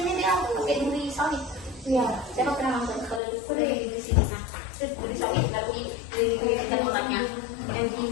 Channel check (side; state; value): right; drops out; at 3.2 s